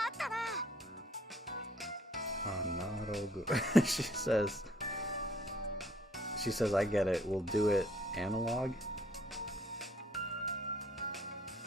She says, I get it. We'll do it analog.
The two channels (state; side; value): normal; both; correlation 0.62